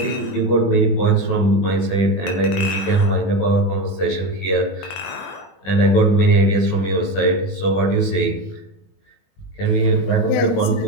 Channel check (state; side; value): late; right; 20 ms